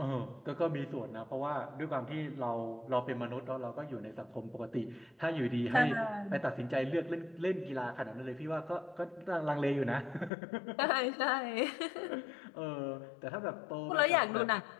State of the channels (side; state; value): right; drops out; at 10.3 s